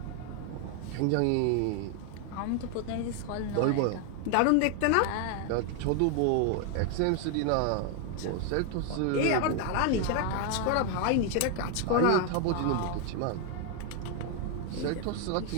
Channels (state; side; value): different; both; correlation 0.01